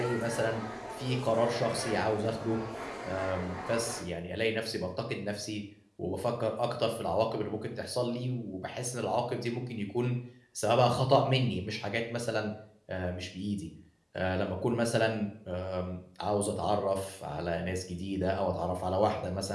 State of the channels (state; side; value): identical; both; correlation 1.00